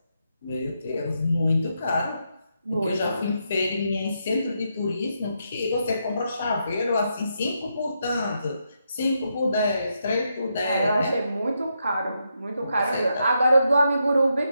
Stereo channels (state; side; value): inverted; both; correlation -0.82